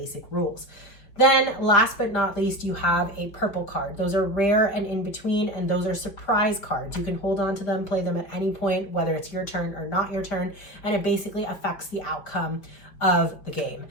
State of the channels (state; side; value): late; right; 5.2 ms